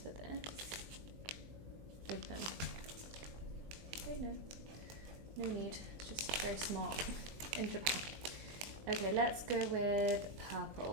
for this? Open. Okay, no need. Just very smart in Japan. Okay, let's go with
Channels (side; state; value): left; late; 20 ms